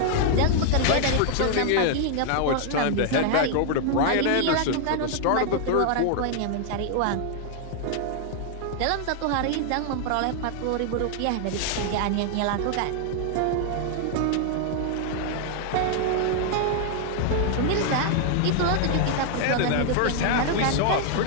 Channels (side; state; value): both; different; correlation 0.00